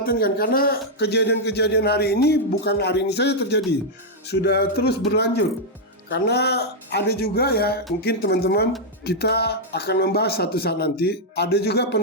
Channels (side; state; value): both; normal; correlation -0.03